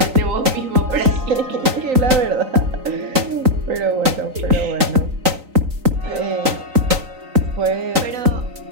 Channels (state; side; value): late; left; 3.9 ms